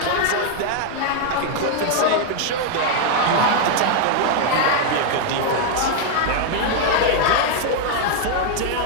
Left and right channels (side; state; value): both; different; correlation 0.00